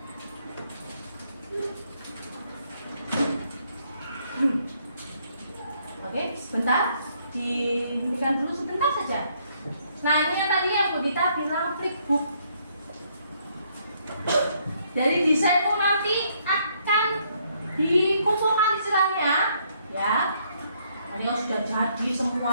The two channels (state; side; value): inverted; both; correlation -0.70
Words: Oke, sebentar. Dihentikan dulu sebentar saja. Nah, ini yang tadi yang Bu Dita bilang flipbook. Dari desain pun nanti akan dikumpulkan istilahnya, ya. Ini sudah jadi